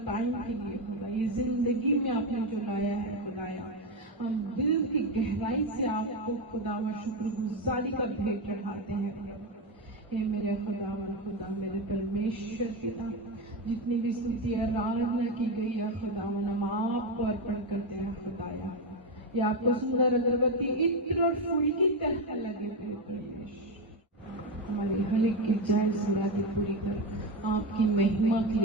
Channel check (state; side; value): normal; both; correlation 0.12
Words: टाइम के लिए खुदा, ये जिंदगी में आपने जो लाया है खुदाया। हम दिल की गहराई से आपको खुदा व शुक्रगुजारी का भेंट चढ़ाते हैं। हे मेरे खुदावन खुदा, मेरे परमेश्वर पिता, जितनी भी स्तुति आराधना की गई है खुदावन, हम आपको अर्पण करते हैं खुदाया। ये आपको सुंदर अगरबत्ती इत्र और फूल की तरह लगे परमेश्वर। हमारी हर एक की जान समाधि पूरी कर आपकी महिमा के